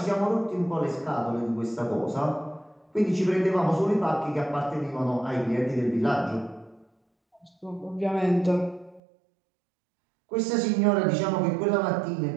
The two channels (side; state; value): left; drops out; at 9.0 s